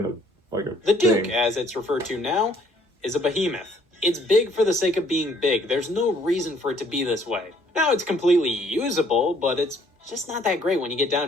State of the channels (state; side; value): normal; both; correlation 0.63